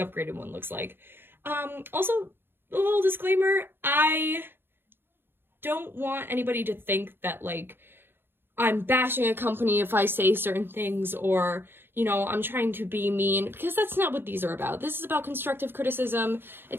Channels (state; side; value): late; left; 0.10 ms